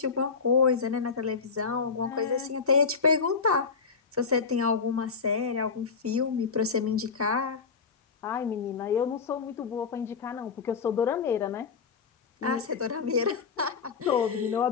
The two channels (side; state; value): right; quieter; 5.4 dB